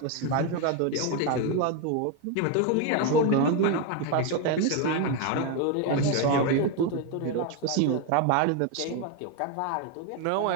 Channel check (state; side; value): different; both; correlation 0.02